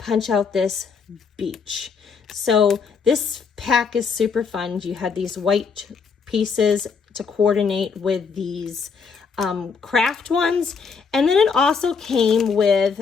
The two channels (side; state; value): right; quieter; 5.5 dB